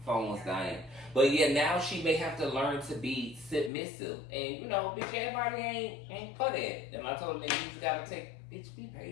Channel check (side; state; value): right; drops out; at 3.7 s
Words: phone was dying. But yeah, now she may have to learn to be submissive. And you know, bitch, everybody ain't for that. And I told her, nigga, you just gotta bitch, be